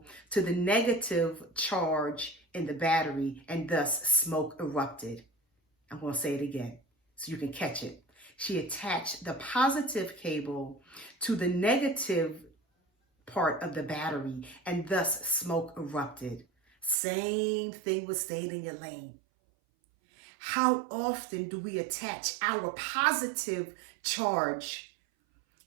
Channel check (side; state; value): left; drops out; at 16.9 s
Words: to the negative charge in the battery, and thus smoke erupted. I'm going to say it again so you can catch it. She attached the positive cable to the negative part of the battery, and thus smoke erupted. Same thing with staying in your lane. How often do we attach our positive charge